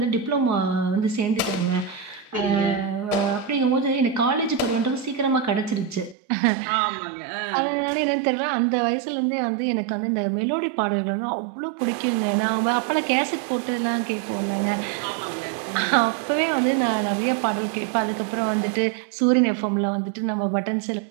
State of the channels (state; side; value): drops out; left; at 6.2 s